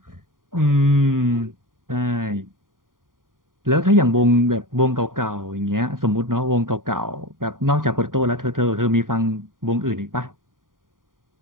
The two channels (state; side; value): late; left; 0.90 ms